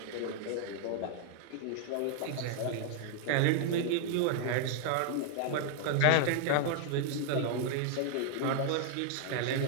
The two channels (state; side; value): different; both; correlation -0.01